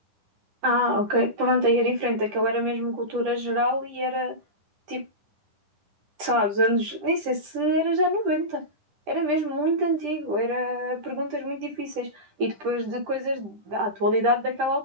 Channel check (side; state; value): left; late; 10 ms